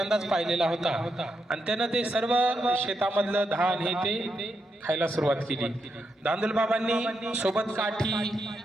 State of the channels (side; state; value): both; normal; correlation 0.83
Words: पाहिलेला होता आणि त्यानं ते सर्व शेतामधलं धान हे ते खायला सुरुवात केली. धांदूल बाबांनी सोबत काठी